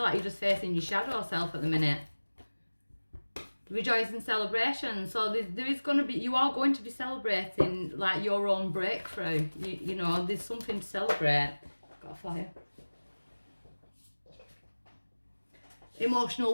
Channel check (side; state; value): both; inverted; correlation -1.00